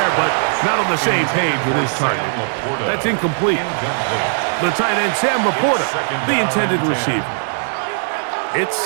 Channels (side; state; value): left; silent; 57 dB below the other